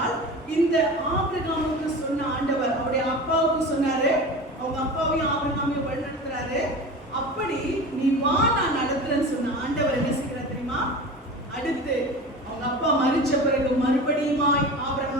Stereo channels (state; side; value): normal; both; correlation 0.32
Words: இந்த ஆபிரகாமுக்கு சொன்ன ஆண்டவர் அவருடைய அப்பாவுக்கு சொன்னாரு, அவங்க அப்பாவையும் ஆபிரகாமையும் வழிநடத்துறாரு. அப்படி நீ வா, நான் நடத்துறேன்னு சொன்ன ஆண்டவர் என்ன செய்கிறார் தெரியுமா? அடுத்து அவங்க அப்பா மரிச்ச பிறகு மறுபடியுமாய்